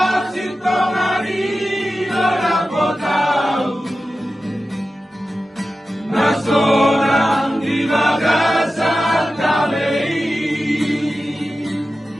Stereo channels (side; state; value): both; normal; correlation 0.94